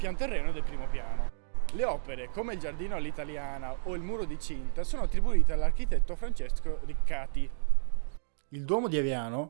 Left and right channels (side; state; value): left; silent; digital silence